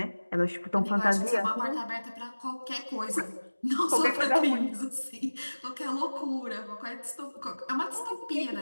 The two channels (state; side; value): inverted; both; correlation -1.00